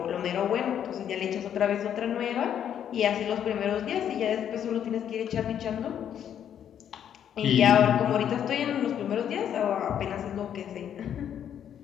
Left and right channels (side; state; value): right; quieter; 9.4 dB